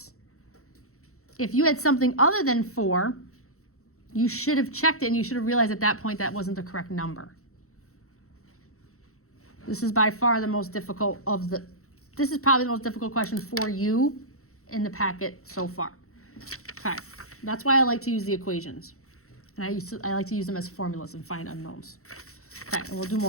If you had something other than 4, you should have checked it and you should have realized at that point that wasn't the correct number. This is by far the most difficult this is probably the most difficult question for you in the packet so far. Okay, that's why I like to use the equations. And I like to use them as formulas and find unknowns. Okay, and we'll do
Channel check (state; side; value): late; right; 0.64 ms